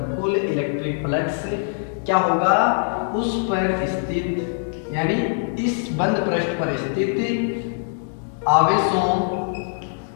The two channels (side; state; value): right; silent; digital silence